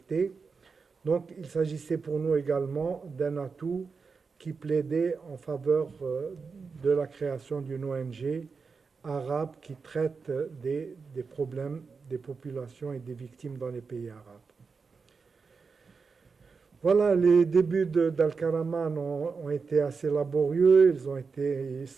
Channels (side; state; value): left; quieter; 5.0 dB